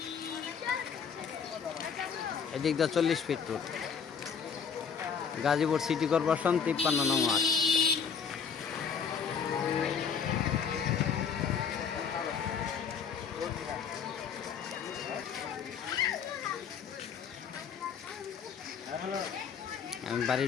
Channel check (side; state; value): right; quieter; 6.6 dB